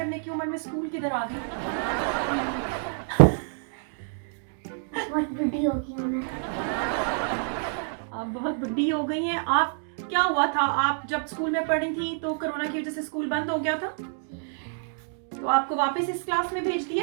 की उम्र में स्कूल किधर आ गई? बहुत बुढ़ी हो गई हूँ मैं। आप बहुत बुढ़ी हो गई हैं। आप क्या हुआ था, आप जब स्कूल में पढ़ी थी तो कोरोना की वजह से स्कूल बंद हो गया था, तो आपको वापस इस क्लास में भेज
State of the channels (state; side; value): silent; left; digital silence